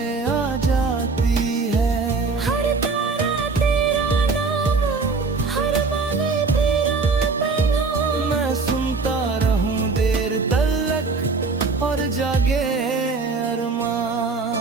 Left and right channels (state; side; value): quieter; left; 4.3 dB